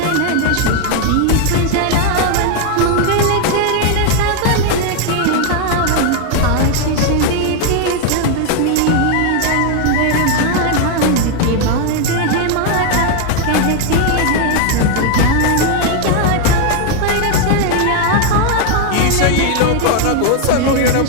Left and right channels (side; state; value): both; different; correlation 0.00